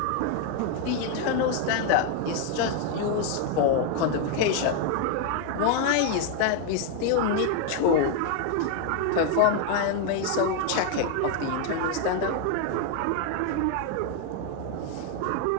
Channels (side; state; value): both; different; correlation 0.01